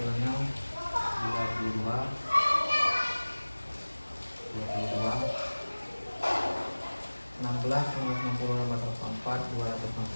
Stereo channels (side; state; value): both; inverted; correlation -1.00